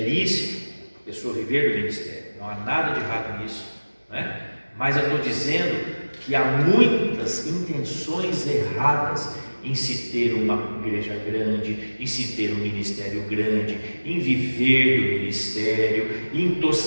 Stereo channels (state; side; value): inverted; both; correlation -1.00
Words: a pessoa viver do ministério. Não há nada de errado nisso, né? Mas eu estou dizendo que há muitas intenções erradas em se ter uma igreja grande, em se ter um ministério grande, em viver do ministério, em